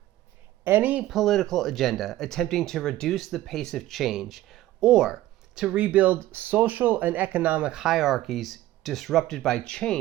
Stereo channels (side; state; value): left; quieter; 15.1 dB